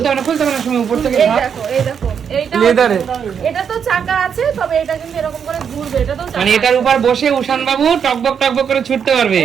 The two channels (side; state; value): left; quieter; 7.4 dB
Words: খুলতে হবে না সময় উপর থেকে এই ভাব। দেখো, এই দেখো, এইটা লেদারে এটা তো চাকা আছে, তবে এটা কিন্তু এরকম করে ঘুরবে, এটা তো চাকা মানে এটার উপর বসে উষান বাবু টকবক টকবক করে ছুটতে পারবে।